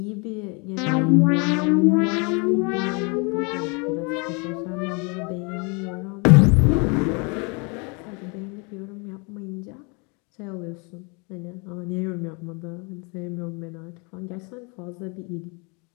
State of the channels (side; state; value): right; quieter; 32.3 dB